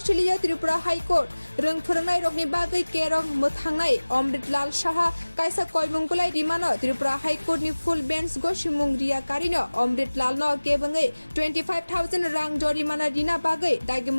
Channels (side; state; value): both; inverted; correlation -1.00